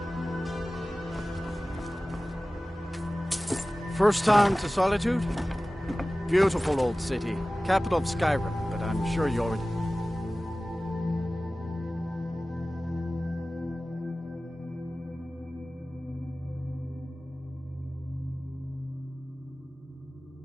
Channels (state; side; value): normal; both; correlation 0.97